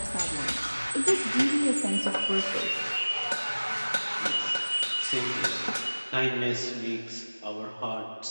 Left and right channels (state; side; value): inverted; both; correlation -1.00